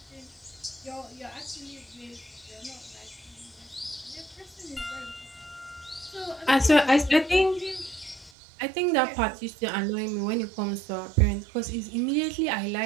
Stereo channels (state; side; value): drops out; left; at 8.3 s